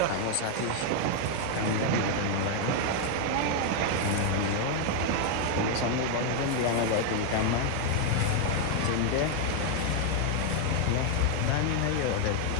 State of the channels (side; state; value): both; different; correlation 0.00